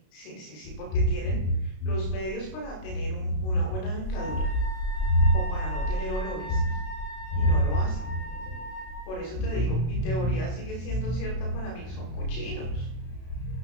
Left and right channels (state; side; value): late; right; 32 ms